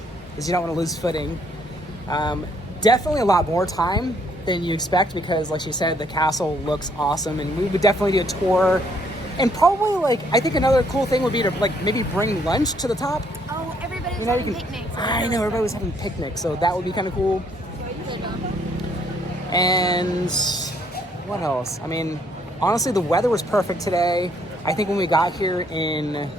because you don't want to lose footing. Definitely a lot more time than you expect, because like she said, the castle looks awesome, and we would definitely do a tour. And probably like, I think another cool thing would be to like maybe bring lunch to the top. Oh, everybody was You know, having you can, picnics. I know, everybody was having picnics, so that would be kind of cool. And what else? I mean, honestly, the weather was perfect today. I think when we got here in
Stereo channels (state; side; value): normal; both; correlation 0.68